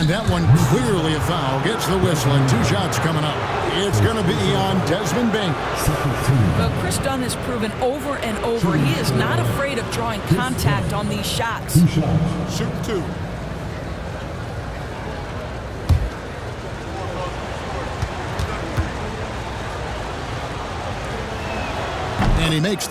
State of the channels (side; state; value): both; identical; correlation 1.00